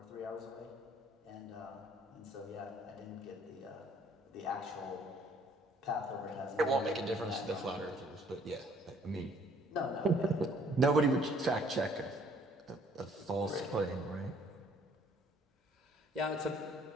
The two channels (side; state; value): both; normal; correlation 0.60